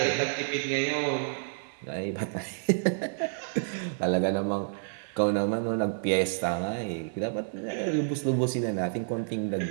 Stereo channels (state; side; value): silent; left; digital silence